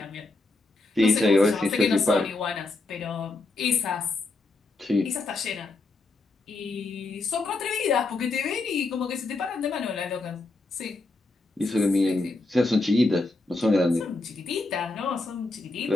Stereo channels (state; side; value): quieter; right; 3.2 dB